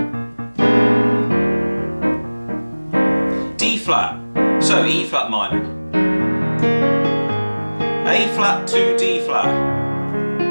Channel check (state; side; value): inverted; both; correlation -1.00